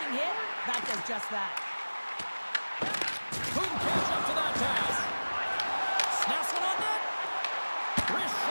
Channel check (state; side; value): inverted; both; correlation -1.00